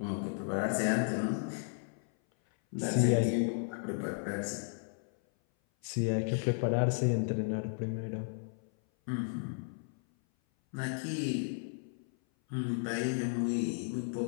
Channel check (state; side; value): silent; right; 55 dB below the other